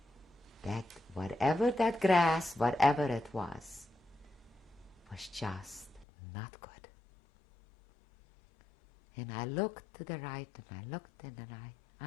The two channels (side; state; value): right; drops out; at 6.1 s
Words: That whatever that grass, whatever it was just not good. And I looked to the right and I looked to the right.